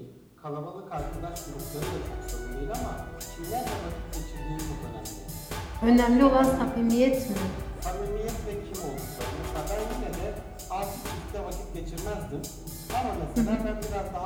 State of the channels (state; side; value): identical; both; correlation 1.00